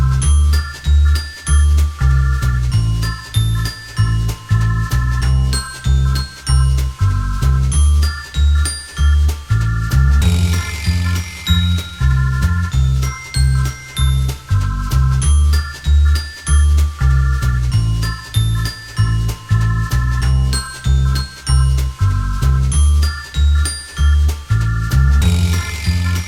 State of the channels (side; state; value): both; identical; correlation 1.00